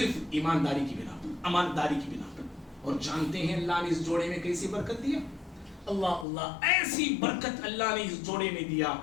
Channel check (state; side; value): drops out; right; at 6.2 s